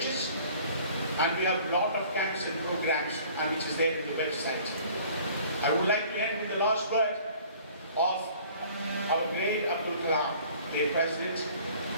And we have a lot of camps and programs, and which is there in the website. I would like to end with the last word of our great Abdul Kalam, the president.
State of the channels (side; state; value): both; inverted; correlation -0.51